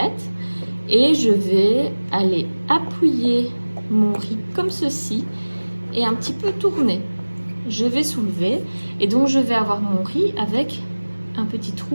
et je vais aller appuyer mon riz comme ceci et un petit peu tourner. Je vais soulever et donc je vais avoir mon riz avec un petit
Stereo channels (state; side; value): inverted; both; correlation -1.00